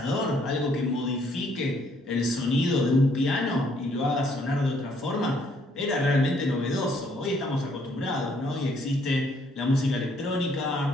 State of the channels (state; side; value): normal; both; correlation 0.67